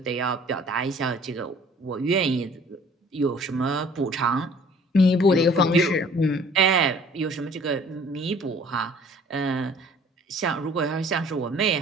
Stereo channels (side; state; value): both; normal; correlation 0.53